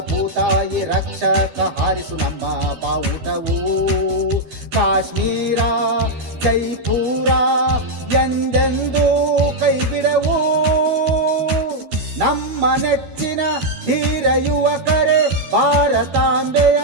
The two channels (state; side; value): late; left; 12 ms